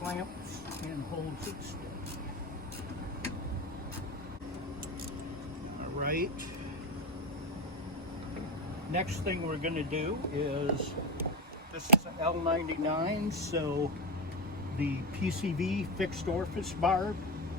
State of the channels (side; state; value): both; normal; correlation 0.16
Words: and holds it steady. All right. Next thing we're going to do is, this is an L99, so the PCV fixed orifice barb,